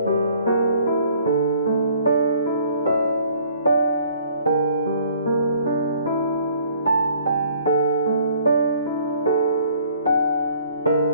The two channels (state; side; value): inverted; both; correlation -0.59